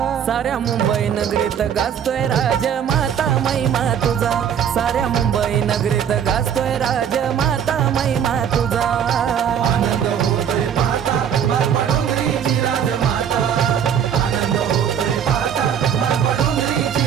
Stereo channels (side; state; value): left; quieter; 8.5 dB